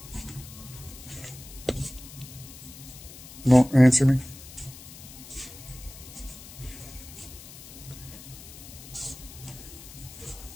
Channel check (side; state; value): left; noise; hiss, 16 dB below the sound